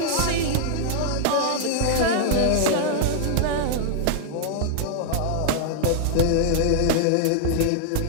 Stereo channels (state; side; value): different; both; correlation -0.01